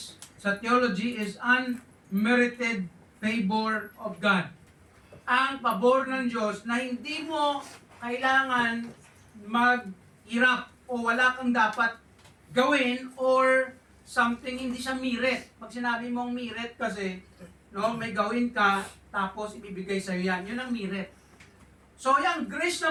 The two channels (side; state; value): both; identical; correlation 1.00